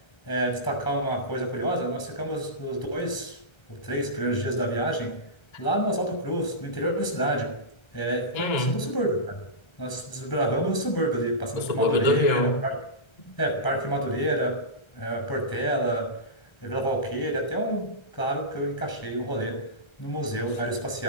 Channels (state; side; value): late; right; 1.3 ms